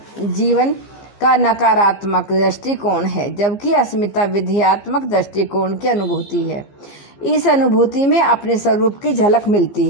का नकारात्मक दृष्टिकोण है, जबकि अस्मिता विधेयात्मक दृष्टिकोण की अनुभूति है। इस अनुभूति में अपने स्वरूप की झलक मिलती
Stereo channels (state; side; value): late; right; 15 ms